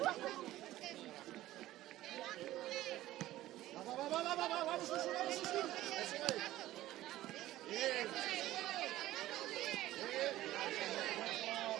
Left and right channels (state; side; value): quieter; left; 15.2 dB